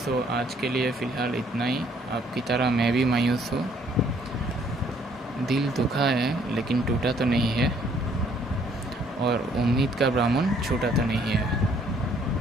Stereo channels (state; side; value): normal; both; correlation 0.63